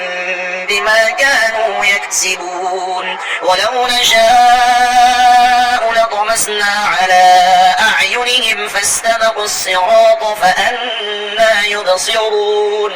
بما كانوا يكسبون ولو نشاء لطمسنا على أعينهم فاستبقوا الصراط فأنى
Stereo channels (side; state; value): both; identical; correlation 1.00